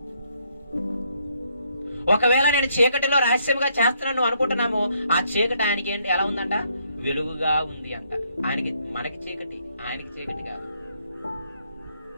ఒకవేళ నేను చీకటిలో రహస్యంగా చేస్తున్నాను అనుకుంటున్నాము, ఆ చీకటి ఆయనకి ఏంటి ఎలా ఉందంట? వెలుగుగా ఉంది అంట. ఆయనకి మనకి చీకటి, ఆయనకి చీకటి కాదు.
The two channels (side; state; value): both; inverted; correlation -0.72